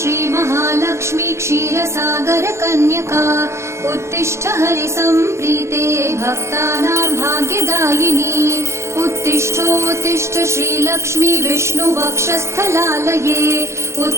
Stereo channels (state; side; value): late; left; 0.13 ms